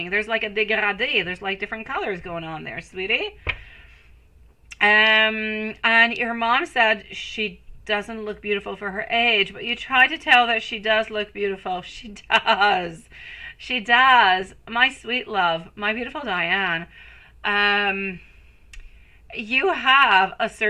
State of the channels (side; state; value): both; identical; correlation 1.00